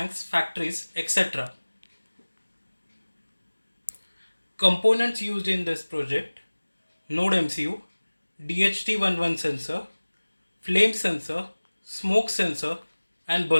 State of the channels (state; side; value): inverted; both; correlation -1.00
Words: factories, etc. Components used in this project: Node MCU, DHT11 sensor, flame sensor, smoke sensor, and